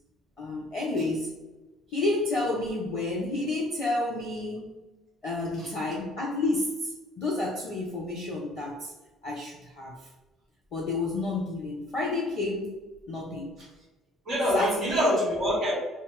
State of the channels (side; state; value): both; normal; correlation 0.56